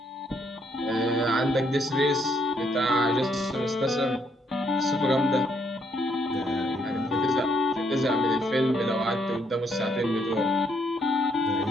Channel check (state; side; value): normal; both; correlation 0.72